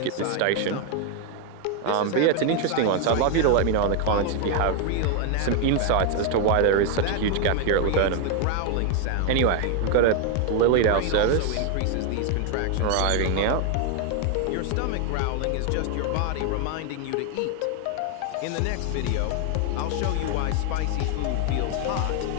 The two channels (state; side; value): different; both; correlation 0.01